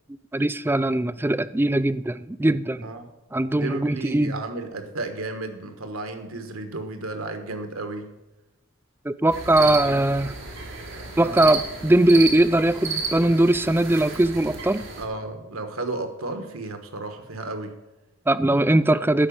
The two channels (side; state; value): both; normal; correlation 0.80